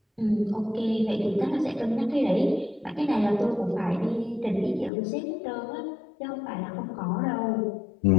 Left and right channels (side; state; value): right; drops out; at 4.9 s